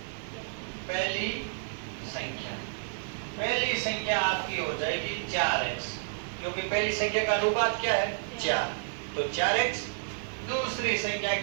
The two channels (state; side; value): silent; left; digital silence